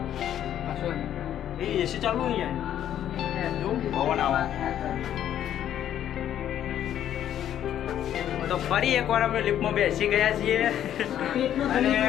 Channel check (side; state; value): right; quieter; 10.7 dB